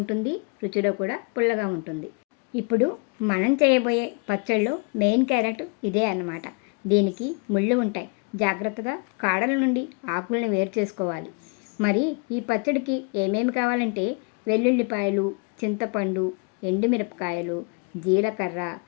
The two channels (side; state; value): right; quieter; 34.6 dB